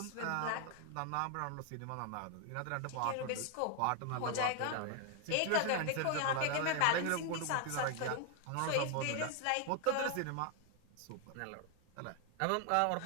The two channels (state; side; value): different; both; correlation 0.00